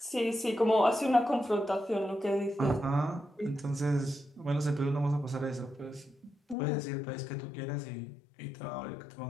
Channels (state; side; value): drops out; right; at 6.6 s